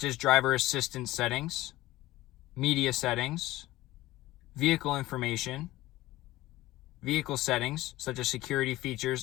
as driver assistance settings, media settings, vehicle information, vehicle settings, such as security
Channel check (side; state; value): right; quieter; 17.2 dB